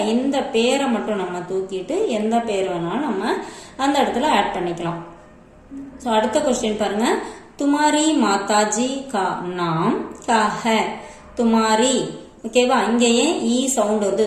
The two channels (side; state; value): both; identical; correlation 1.00